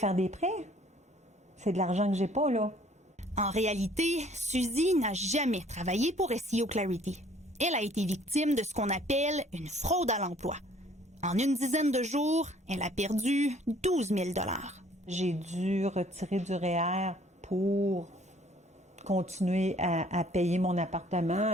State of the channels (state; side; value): normal; both; correlation 0.58